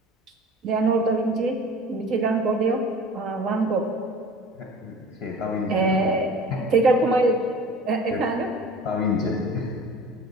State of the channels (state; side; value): normal; both; correlation 0.42